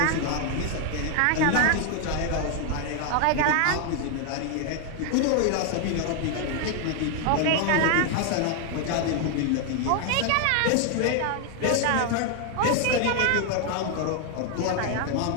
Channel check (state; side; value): different; both; correlation 0.00